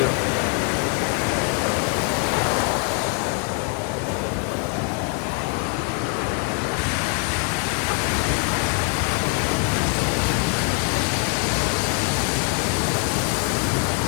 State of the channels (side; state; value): right; quieter; 35.6 dB